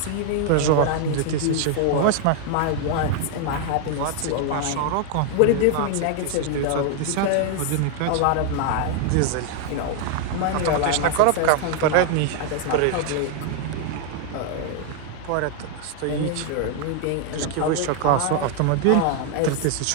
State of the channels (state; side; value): different; both; correlation 0.00